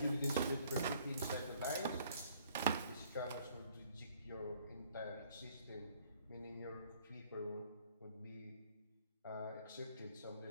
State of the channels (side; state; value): both; inverted; correlation -0.61